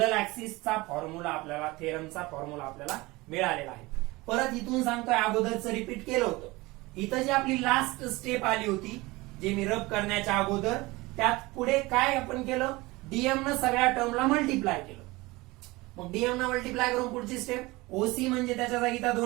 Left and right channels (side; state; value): left; quieter; 21.8 dB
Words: ऍक्सिसचा फॉर्म्युला आपल्याला थेरमचा फॉर्म्युला आपल्याला मिळालेला आहे. परत इथून सांगतोय अगोदरचं रिपीट केलं होतं. इथं जी आपली लास्ट स्टेप आली होती जे मी रब करण्याच्या अगोदर त्यात पुढे काय आपण केलं डीएम न सगळ्या टर्मला मल्टिप्लाय केलं. मग डीएम न मल्टिप्लाय करून पुढची स्टेप ओसी म्हणजे त्याच्या जागी त्या